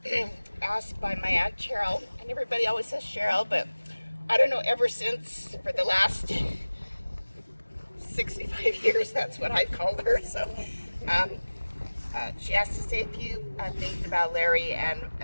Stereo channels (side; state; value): both; inverted; correlation -1.00